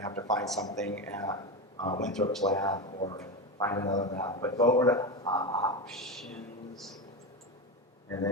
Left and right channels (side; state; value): both; normal; correlation 0.18